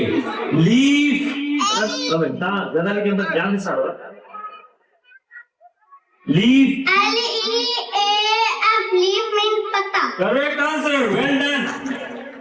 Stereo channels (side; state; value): both; identical; correlation 1.00